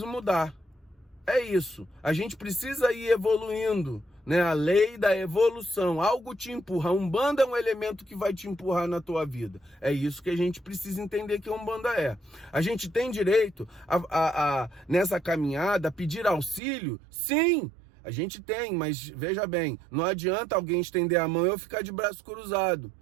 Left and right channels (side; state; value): left; drops out; at 16.6 s